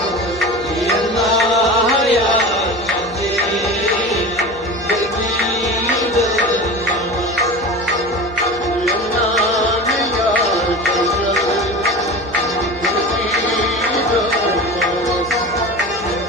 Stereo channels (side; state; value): right; noise; hum, 20 dB below the sound